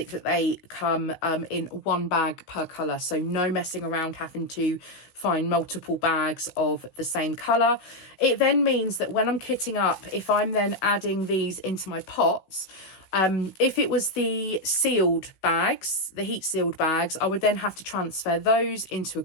that they come in one bag per colour. So no messing around having to find multiple bags of the same colour. It then means that when I'm kitting up, if I'm then adding these into my pots, if it was the sealed bags, the heat sealed bags, I would then have to transfer those into a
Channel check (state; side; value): late; right; 16 ms